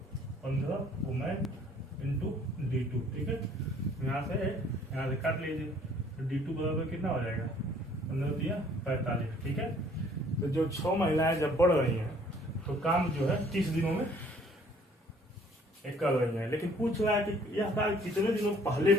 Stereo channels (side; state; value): both; normal; correlation 0.58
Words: 15 women into D2, ठीक है। यहाँ से काट लीजिए। तो D2 बराबर कितना हो जाएगा? 15 दिया 45, ठीक है। तो जो 6 महिलाएं जब बढ़ रही हैं तो काम जो है 30 दिनों में कर रही है, लेकिन पूछ रहा है कि यह कार्य कितने दिनों पहले